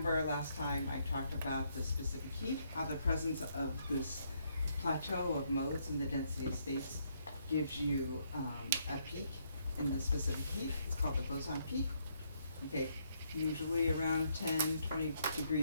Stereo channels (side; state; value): both; inverted; correlation -0.73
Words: last time I talked about the specific heat, how the presence of this plateau of modes in the density states gives you a peak in the specific heat. It's called the boson peak, okay, usually around 10, 20